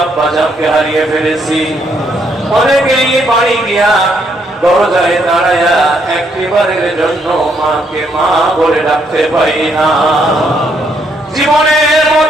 আব্বা জানকে হারিয়ে ফেলেছি। অনেকেই বাড়ি গিয়া দরজায় দাঁড়ায়া একটিবারের জন্য মাকে মা বলে ডাকতে পারি না। জীবনের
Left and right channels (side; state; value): both; normal; correlation 0.73